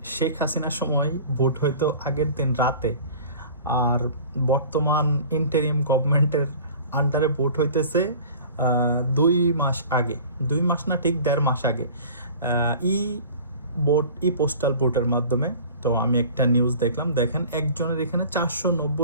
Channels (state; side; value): inverted; both; correlation -0.43